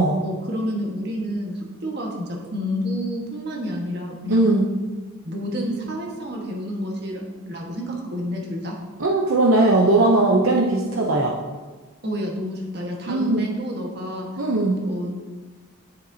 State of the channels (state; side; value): normal; both; correlation 0.32